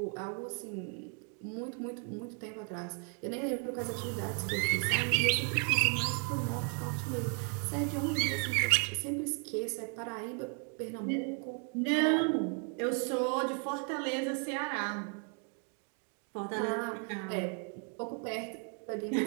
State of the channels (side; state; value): left; quieter; 38.9 dB